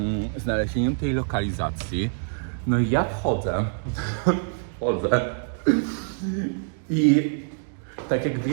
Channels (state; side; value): silent; left; digital silence